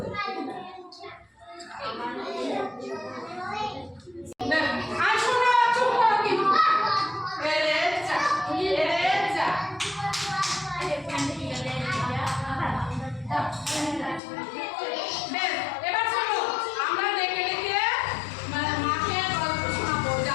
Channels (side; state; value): right; drops out; at 14.2 s